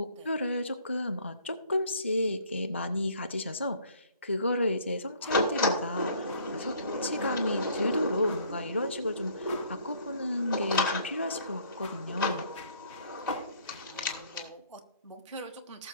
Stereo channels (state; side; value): inverted; both; correlation -0.59